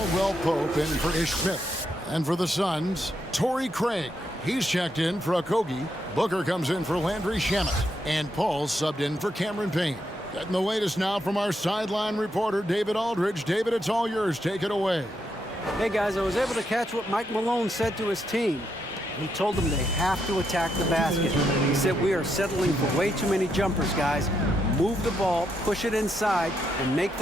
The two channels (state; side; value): normal; both; correlation 0.80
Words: Pope in for Ish Smith. And for the Suns, Torrey Craig. He's checked in for Okogie. Booker comes in for Landry Shamet. And Paul's subbed in for Cameron Payne. Getting the latest now from our sideline reporter, David Aldridge. David, it's all yours. Take it away. Hey, guys, I was able to catch what Mike Malone said to his team. He told them they have to attack the basket. He said, we are settling for way too many jumpers, guys. Move the ball, push it inside, and make